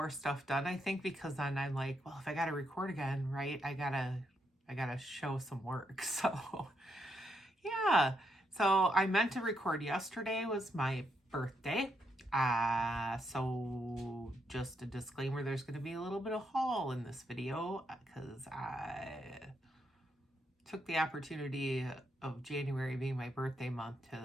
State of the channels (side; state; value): both; normal; correlation 0.79